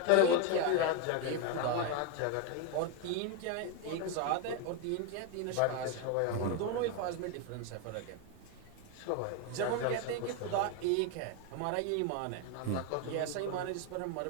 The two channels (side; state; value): both; different; correlation 0.01